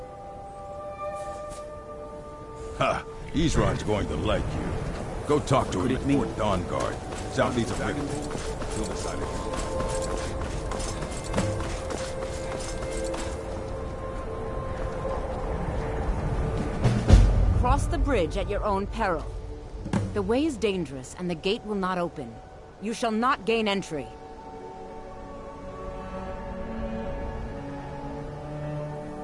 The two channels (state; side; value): identical; both; correlation 1.00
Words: Ha! Isran's going to like you. Go talk to him at Fort Dawn Guard, southeast of River. He'll decide it. Cross the bridge at your own peril. The way is dangerous, and the gate will not open. You shall not gain entry.